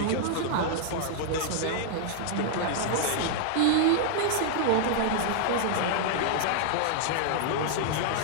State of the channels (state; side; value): different; both; correlation -0.01